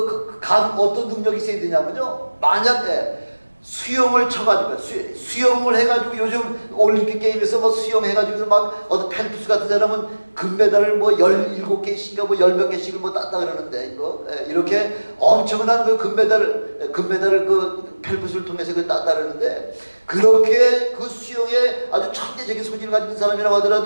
능력이 있어야 되냐면요, 만약에 수영을 쳐가지고 수영을 해가지고 요즘 올림픽 게임에서 수영해가지고 어떤 펠프스 같은 사람은 금메달을 17개씩인가 10몇 개씩을 땄다 그러는데, 이렇게 엄청난 그 금메달을 그 펠프스를 통해서 땄다 그러는데, 그렇게 그 수영에 아주 천재적인 소질을 가진 사람이라고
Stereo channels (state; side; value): inverted; both; correlation -1.00